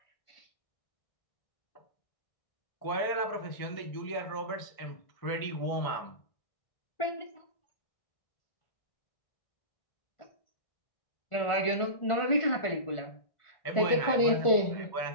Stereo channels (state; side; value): late; right; 1.4 ms